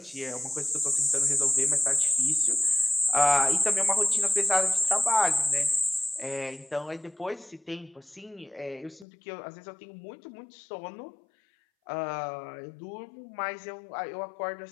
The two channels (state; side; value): drops out; right; at 9.1 s